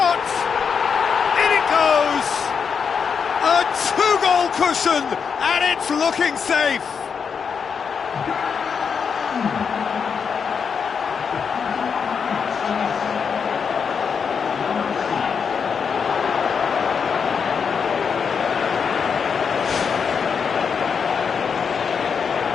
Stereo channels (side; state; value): right; quieter; 6.3 dB